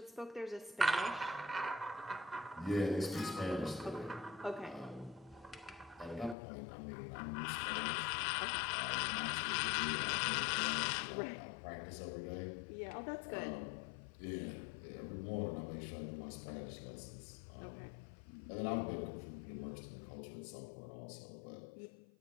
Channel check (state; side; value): drops out; right; at 6.4 s